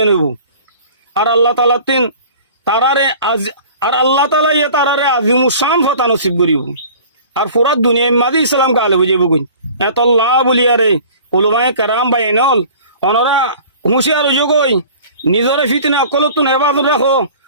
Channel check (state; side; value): inverted; both; correlation -0.45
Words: হইব আর আল্লাহ তাআলা তারারে আজিমুস শান ফতা নসিব করিব আর পুরা দুনিয়া মাদি ইসলাম কালে বুঝিব কই এত আল্লাহ বলিয়ারে উলামায়ে কেরাম বাইনল অনরা হুঁশিয়ার হইজ কই নিজরে ফিতনা কলতুন হেফাজত রাখো